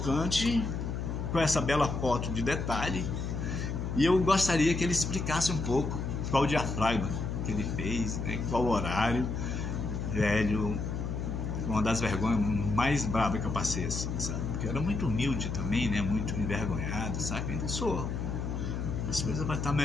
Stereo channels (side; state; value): left; noise; hum, 3 dB below the sound